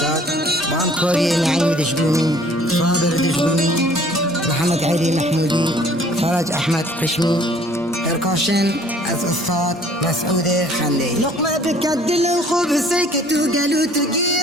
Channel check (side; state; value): both; normal; correlation 0.56